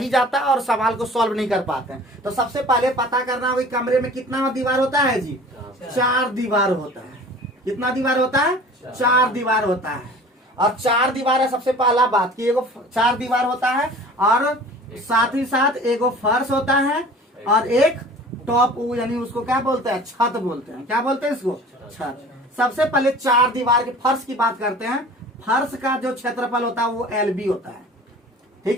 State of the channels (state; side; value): normal; both; correlation 0.44